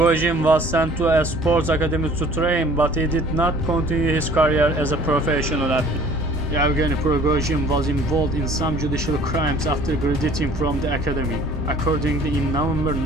was sent to a sports academy to train, but he did not continue his career as a professional athlete. Yevgeny Prigozhin was involved in some judicial crimes after graduating from the academy. Accordingly, in November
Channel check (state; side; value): normal; both; correlation 0.51